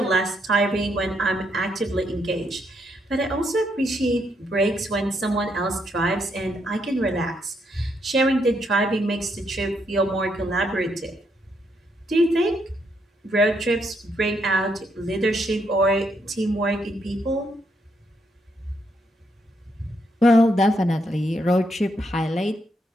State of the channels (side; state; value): both; normal; correlation 0.76